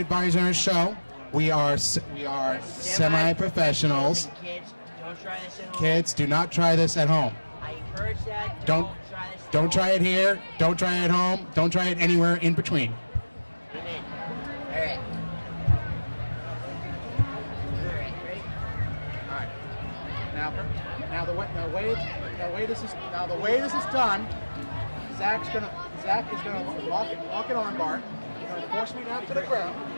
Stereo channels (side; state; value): both; inverted; correlation -1.00